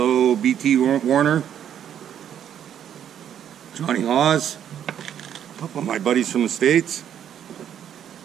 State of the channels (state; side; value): quieter; left; 9.6 dB